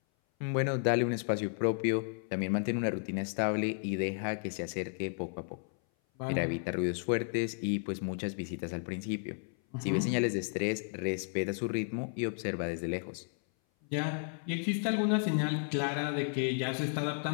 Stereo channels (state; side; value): silent; right; 56 dB below the other